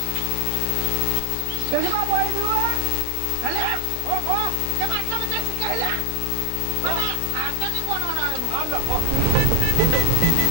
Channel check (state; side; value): different; both; correlation 0.01